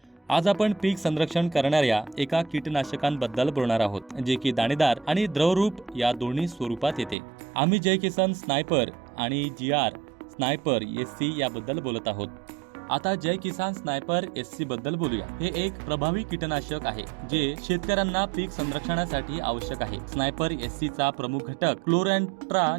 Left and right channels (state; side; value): drops out; left; at 7.2 s